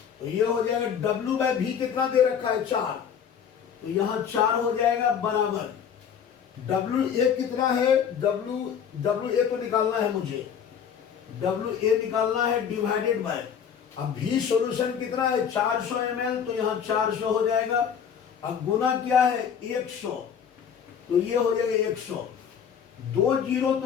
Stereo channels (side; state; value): right; quieter; 7.8 dB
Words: तो ये हो जाएगा W/V कितना दे रखा है 4, तो यहां 4 हो जाएगा बराबर WA कितना है, WA तो निकालना है मुझे, WA निकालना है डिवाइडेड बाय, अब V सॉल्यूशन कितना है 400 ml, तो यहां 400 हो जाएगा। अब गुना क्या है 100, तो ये हो जाएगा 100, 2 जीरो